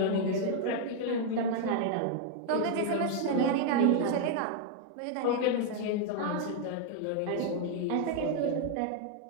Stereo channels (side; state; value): both; different; correlation 0.00